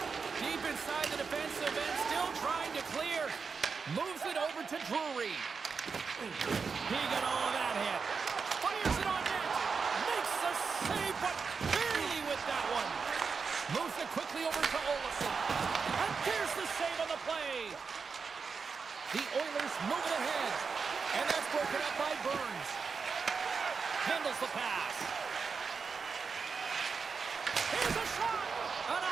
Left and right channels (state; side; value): quieter; left; 5.3 dB